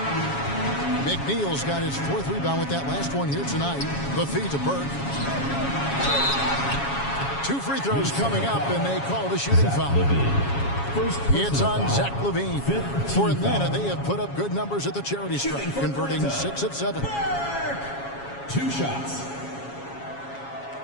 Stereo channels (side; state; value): right; late; 7.2 ms